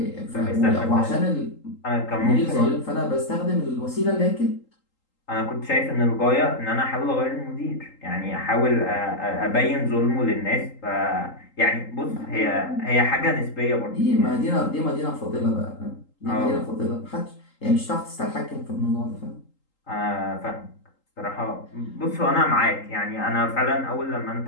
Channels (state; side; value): late; right; 3.8 ms